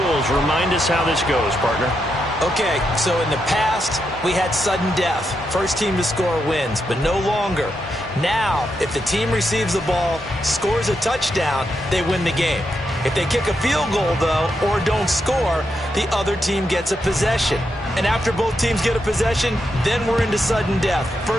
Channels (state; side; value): normal; both; correlation 0.83